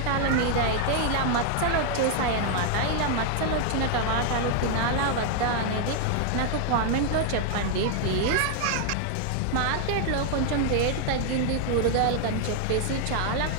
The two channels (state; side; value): different; both; correlation 0.00